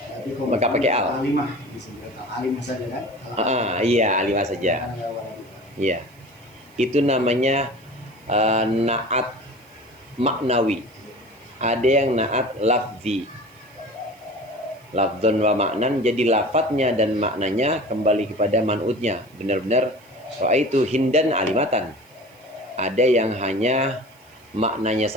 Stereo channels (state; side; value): noise; right; hiss, 30 dB below the sound